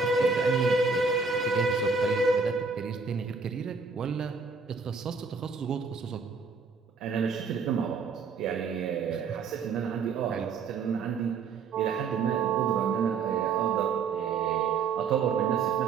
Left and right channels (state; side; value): quieter; left; 5.1 dB